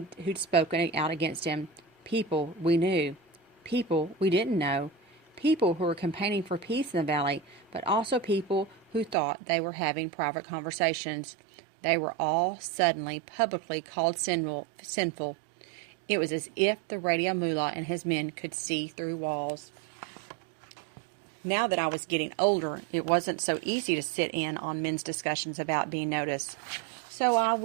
spoken out against him, people we knew, people we didn't know, people who were campaigning for peace in the valley, but also people who thought they were having private conversations. They were all suddenly publicly called sinful. It was as if the Radio Mullah and his men could see through walls. Now that I was getting older, it wasn't so easy to sit in on men's discussions about being noticed. So I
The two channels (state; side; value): drops out; left; at 9.2 s